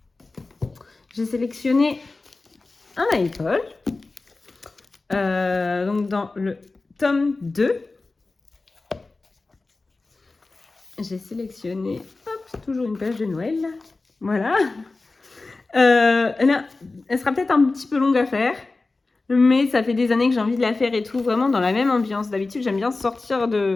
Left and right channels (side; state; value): right; quieter; 3.5 dB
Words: j'ai sélectionné un iPod. Donc dans le tome 2, j'ai sélectionné, hop, toujours une page de Noël. Voilà. Elle sera peut-être un petit peu longue à faire, mais ça fait des années que j'ai envie de la faire et tout, vraiment dans la même ambiance. D'habitude, j'aime bien sortir